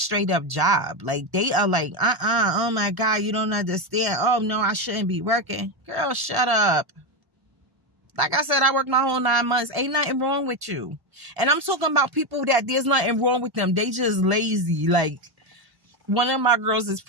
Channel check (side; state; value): left; late; 1.0 ms